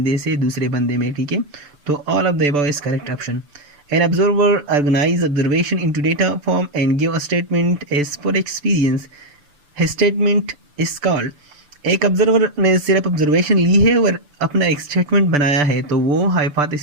से दूसरे बंदे में। ठीक है, तो all of the above is correct option. An observer organize observation into data form and give a statement as per experience. His statement is called। एक ऑब्जर्वर ने सिर्फ ऑब्जर्वेशन ली है और अपना एक स्टेटमेंट बनाया है तो वो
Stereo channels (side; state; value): left; late; 6.8 ms